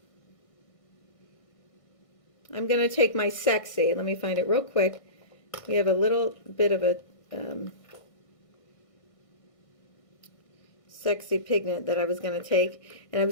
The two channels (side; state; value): right; late; 1.6 ms